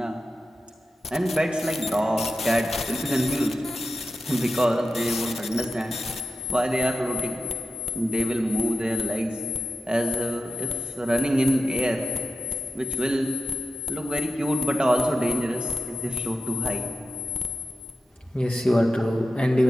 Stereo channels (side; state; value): both; normal; correlation 0.92